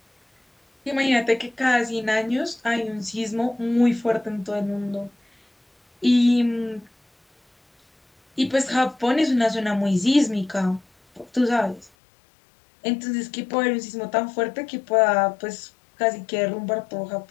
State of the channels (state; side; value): drops out; right; at 11.9 s